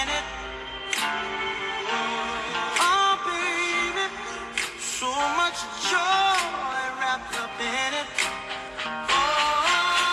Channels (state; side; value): identical; both; correlation 1.00